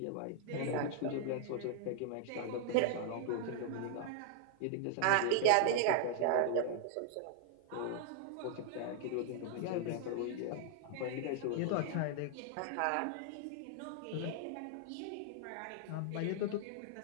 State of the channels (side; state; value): both; different; correlation 0.00